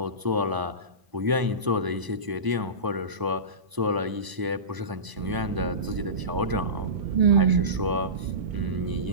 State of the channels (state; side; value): late; left; 1.0 ms